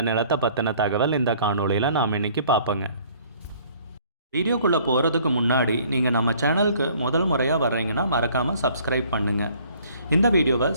நிலத்தை பற்றின தகவல் இந்த காணொளியில் நாம் இன்றைக்கி பார்ப்போங்க. வீடியோக்குள்ளே போகிறதுக்கு முன்னாடி நீங்கள் நம்ம சேனலுக்கு முதல் முறையாக வர்றீங்கன்னா மறக்காமல் சப்ஸ்கிரைப் பண்ணுங்கள். இந்த வீடியோவை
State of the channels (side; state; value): both; inverted; correlation -0.57